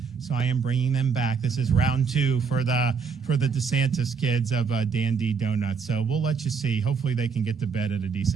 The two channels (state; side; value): quieter; left; 5.8 dB